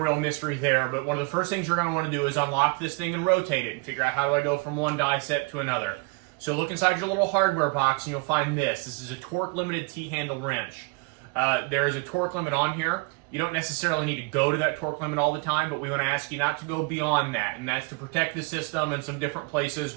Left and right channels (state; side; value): quieter; left; 29.6 dB